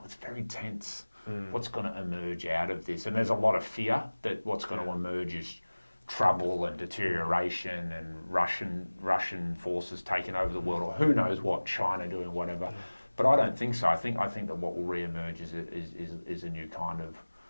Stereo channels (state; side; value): inverted; both; correlation -1.00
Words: very tense. What's going to emerge out of this? And there's a lot of fear that what's going to emerge is trouble and deterioration and Russian forces taking over the world, or who knows what, China doing whatever. But I don't think so. I think that what will re-emerge is a new kind of